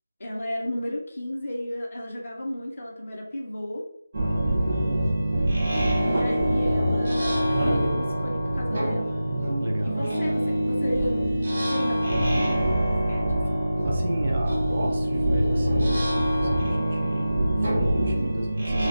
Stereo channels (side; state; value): both; inverted; correlation -0.94